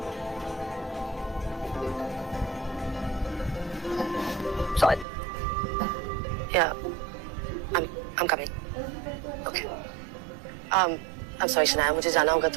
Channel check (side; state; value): left; drops out; at 5.1 s